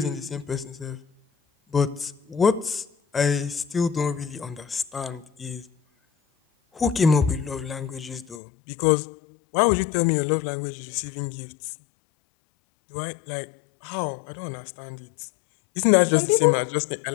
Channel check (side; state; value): right; drops out; at 8.4 s